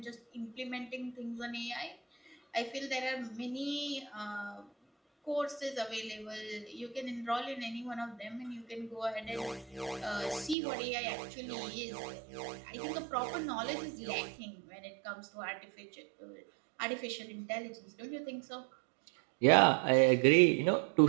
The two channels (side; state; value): left; drops out; at 10.6 s